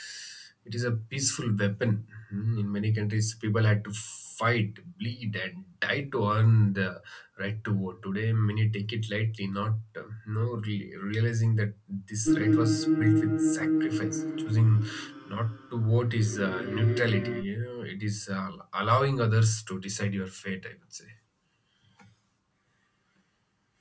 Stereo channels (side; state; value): both; identical; correlation 1.00